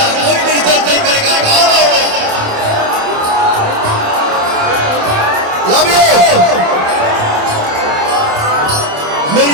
कोई डिस्टर्ब नहीं करेगा। लव यू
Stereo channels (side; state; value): left; late; 27 ms